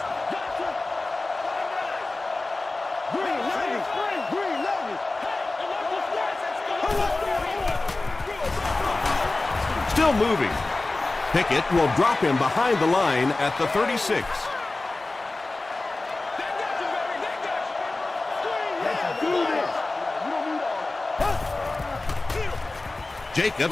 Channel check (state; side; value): quieter; right; 3.2 dB